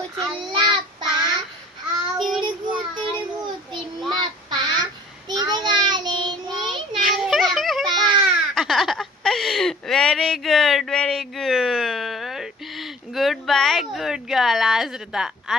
Very good, very good. Good bye, good girl.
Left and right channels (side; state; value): both; normal; correlation 0.51